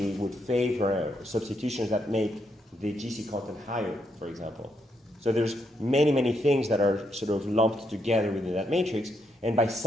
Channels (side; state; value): both; normal; correlation 0.78